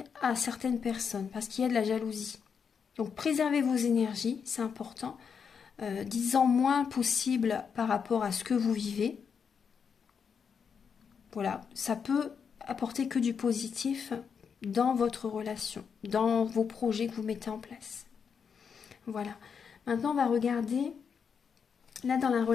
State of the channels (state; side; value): quieter; right; 6.5 dB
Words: à certaines personnes, parce qu'il y a de la jalousie. Donc préservez vos énergies, c'est important. Dites-en moins possible par rapport à ce que vous vivez. Voilà, ça peut apporter que du positif dans votre relation, dans vos projets que vous mettez en place. Voilà. Maintenant, on va regarder, là, dans la